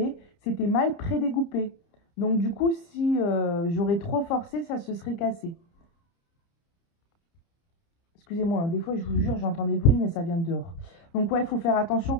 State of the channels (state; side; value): late; right; 30 ms